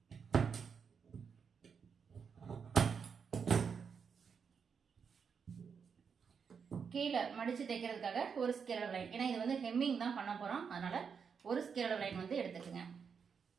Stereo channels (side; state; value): left; quieter; 6.3 dB